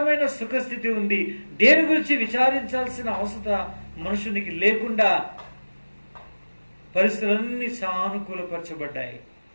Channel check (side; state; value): both; inverted; correlation -1.00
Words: సుఖస్థితి ఉంది. దేని గురించి విచారించాల్సిన అవసరం మనుషునికి లేకుండా పరిస్థితులన్నీ సానుకూలపరచబడ్డాయి.